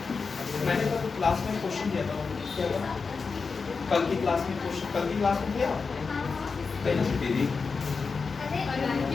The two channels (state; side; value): quieter; right; 4.8 dB